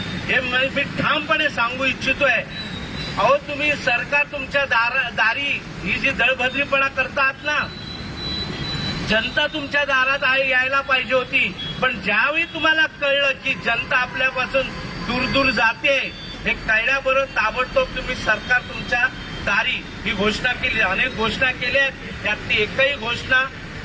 हे मी ठामपणे सांगू इच्छितोय. अहो तुम्ही सरकार तुमच्या दारी ही जी दळभद्रीपणा करतात ना, जनता तुमच्या दारात यायला पाहिजे होती. पण ज्यावेळी तुम्हाला कळलं की जनता आपल्यापासून दूर दूर जाते हे कळल्याबरोबर ताबडतोब तुम्ही सरकार तुमच्या दारी ही घोषणा केली. अनेक घोषणा केल्या आहेत, यातली एकही घोषणा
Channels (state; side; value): identical; both; correlation 1.00